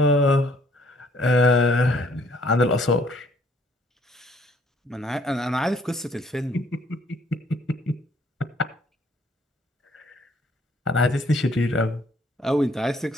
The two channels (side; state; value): both; normal; correlation 0.63